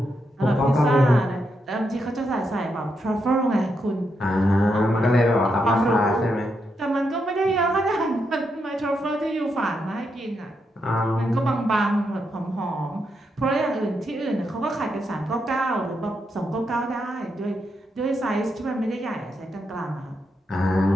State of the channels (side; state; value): both; normal; correlation 0.82